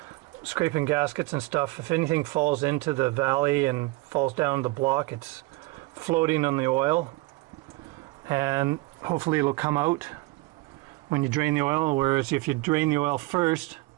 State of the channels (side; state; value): left; quieter; 22.3 dB